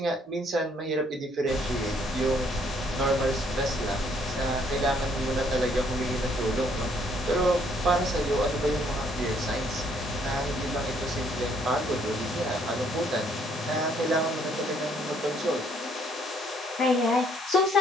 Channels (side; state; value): both; normal; correlation 0.66